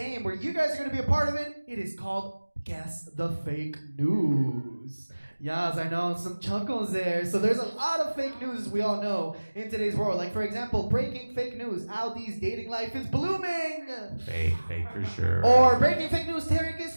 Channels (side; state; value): both; inverted; correlation -1.00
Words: where you guys are gonna be a part of it. It is called Guess the Fake News. Yes, I know, some chuckles there. So there's a lot of fake news, as we all know, in today's world. Like, for example, breaking fake news, Al D's dating life is blooming. Fake for sure. Or breaking fake news, Tarek